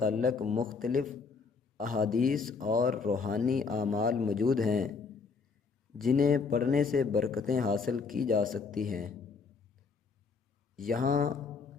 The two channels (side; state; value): right; quieter; 5.0 dB